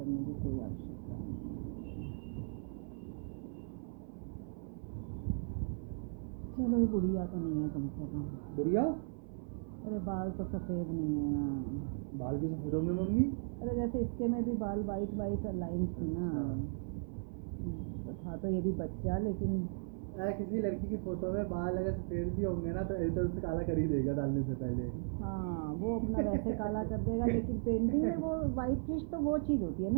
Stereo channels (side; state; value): left; silent; 53 dB below the other